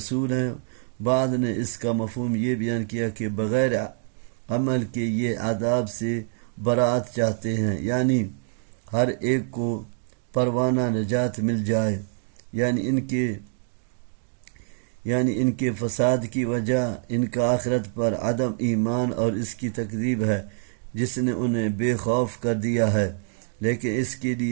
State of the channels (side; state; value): left; silent; 61 dB below the other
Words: ہیں۔ بعض نے اس کا مفہوم یہ بیان کیا کہ بغیر عمل کے یہ عذاب سے برات چاہتے ہیں، یعنی ہر ایک کو پروانہ نجات مل جائے، یعنی ان کے فساد کی وجہ ان کا آخرت پر عدم ایمان اور اس کی تکذیب ہے جس نے انہیں بے خوف کر دیا ہے۔ لیکن اس کے